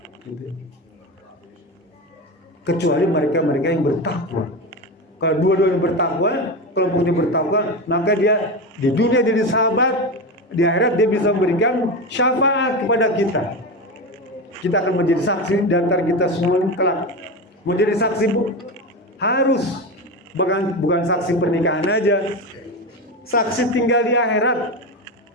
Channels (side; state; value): both; normal; correlation 0.20